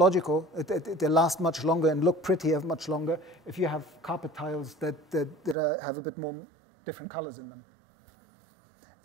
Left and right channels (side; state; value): left; drops out; at 5.6 s